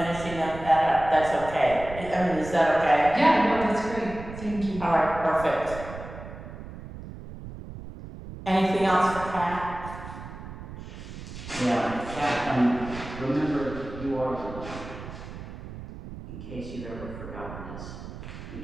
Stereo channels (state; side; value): noise; right; rumble, 12 dB below the sound